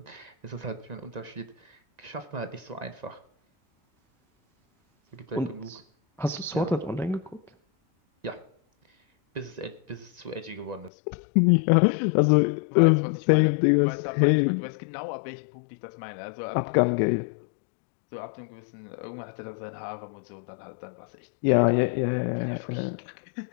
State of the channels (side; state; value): right; drops out; at 10.9 s